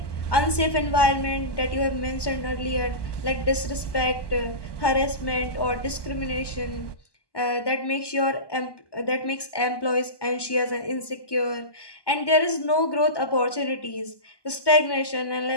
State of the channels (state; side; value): late; right; 1.2 ms